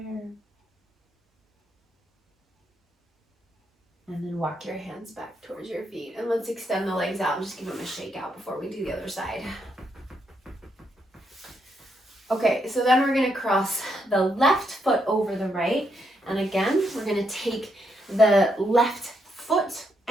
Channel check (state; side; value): normal; both; correlation 0.78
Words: And then walk your hands back towards your feet. And let's extend the legs out and just give them a shake out before we do the other side. Okay, so then we're going to cross the left foot over the right. And again, we're going to take the left foot